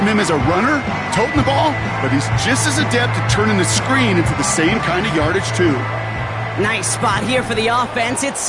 him as a runner, toting the ball, but he's just as adept at turning the screen into the same kind of yardage, too. Nice spot here for the offense. It's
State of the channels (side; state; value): both; identical; correlation 1.00